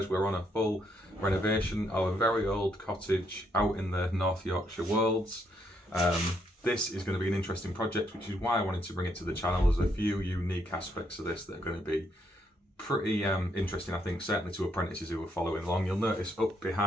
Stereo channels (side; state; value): both; normal; correlation 0.74